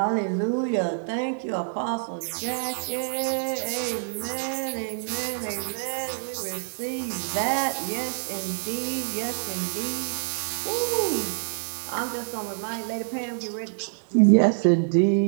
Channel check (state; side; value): silent; left; 60 dB below the other